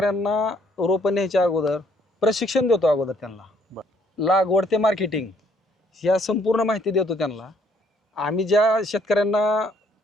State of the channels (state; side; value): normal; both; correlation 0.65